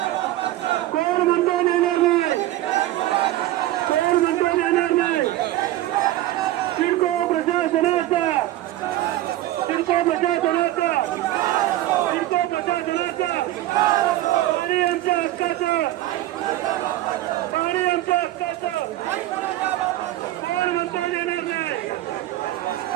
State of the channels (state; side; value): quieter; left; 15.1 dB